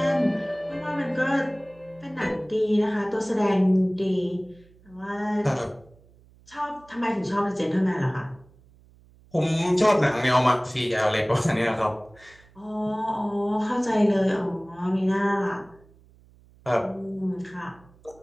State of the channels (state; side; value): noise; right; hum, 27 dB below the sound